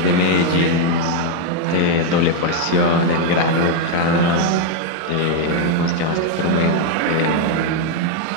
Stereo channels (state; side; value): different; both; correlation 0.01